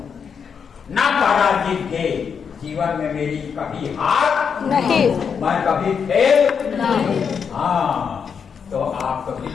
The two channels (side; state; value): right; quieter; 6.6 dB